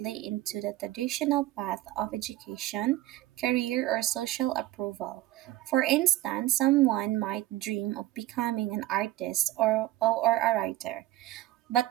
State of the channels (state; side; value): quieter; left; 15.3 dB